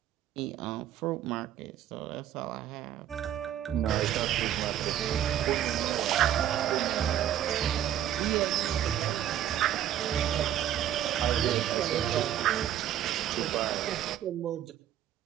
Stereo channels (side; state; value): left; quieter; 11.2 dB